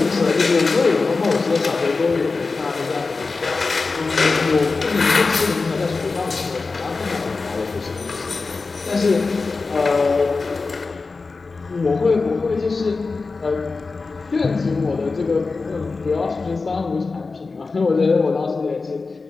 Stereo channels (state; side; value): quieter; right; 4.1 dB